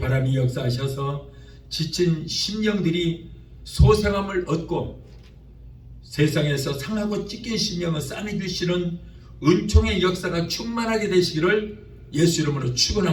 역사하셔서 지친 심령들이 소생함을 얻고 세상에서 상하고 찢긴 심령을 싸매주시는 은총의 역사가 충만하게 되시기를 예수 이름으로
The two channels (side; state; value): both; identical; correlation 1.00